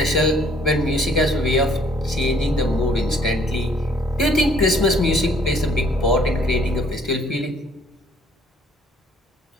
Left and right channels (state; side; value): normal; both; correlation 0.61